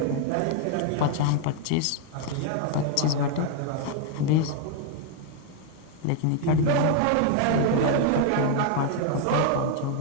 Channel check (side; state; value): both; different; correlation 0.00